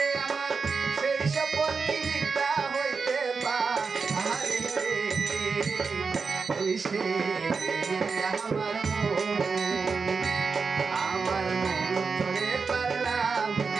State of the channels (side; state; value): left; quieter; 4.9 dB